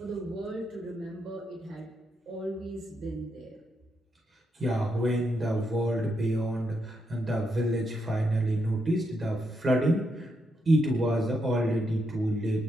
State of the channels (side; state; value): both; normal; correlation 0.81